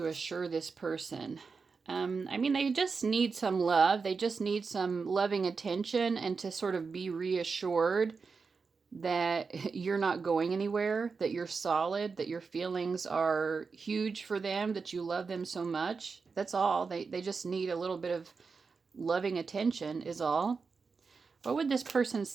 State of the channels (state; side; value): quieter; left; 4.9 dB